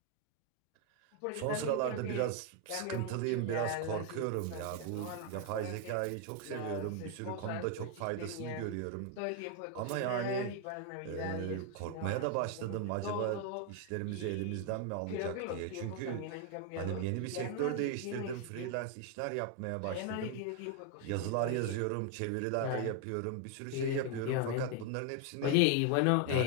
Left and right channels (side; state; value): both; different; correlation 0.01